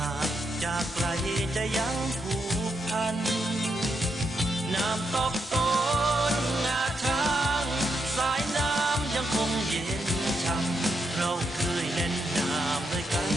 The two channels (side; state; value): both; normal; correlation 0.81